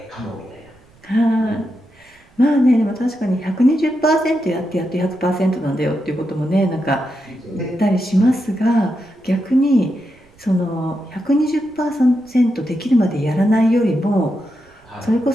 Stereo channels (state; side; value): noise; right; rumble, 30 dB below the sound